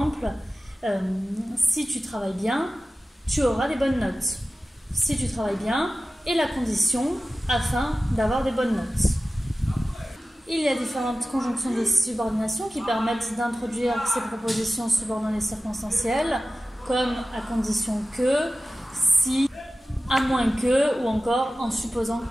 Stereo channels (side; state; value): both; normal; correlation 0.96